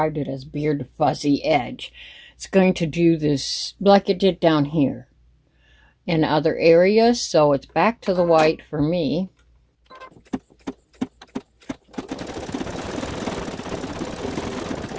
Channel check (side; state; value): both; identical; correlation 1.00